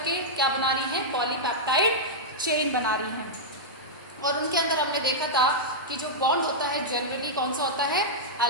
क्या बना रही हैं, पॉलीपेप्टाइड चेन बना रही हैं। और उनके अंदर हमने देखा था कि जो बॉन्ड होता है जनरली कौन सा होता है,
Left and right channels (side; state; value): both; normal; correlation -0.08